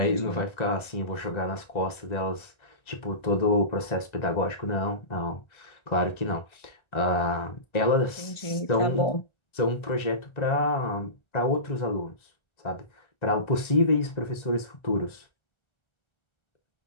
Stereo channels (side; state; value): right; late; 1.3 ms